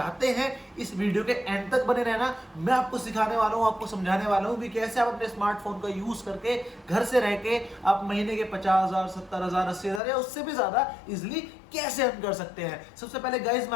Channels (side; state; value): right; drops out; at 10.0 s